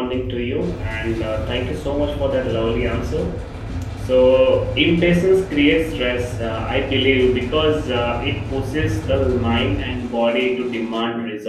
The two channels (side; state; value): both; identical; correlation 1.00